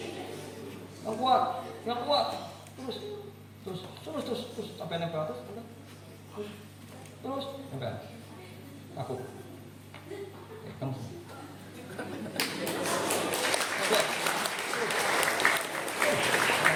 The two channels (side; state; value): both; identical; correlation 1.00